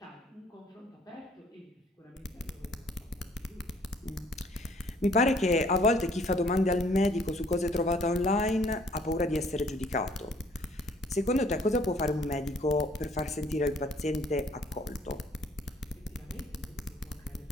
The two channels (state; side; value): normal; both; correlation 0.60